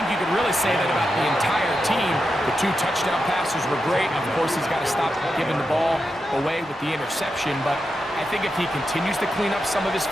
you could really say that about the entire team. The 2 touchdown passes were great. Of course, he's got to stop giving the ball away with the interception. But I think if he continues to clean up some of his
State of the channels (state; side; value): normal; both; correlation 0.88